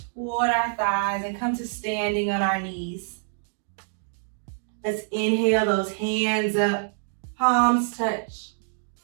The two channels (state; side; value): silent; left; digital silence